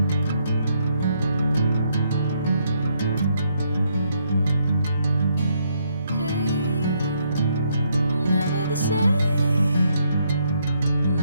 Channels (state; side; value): inverted; both; correlation -0.73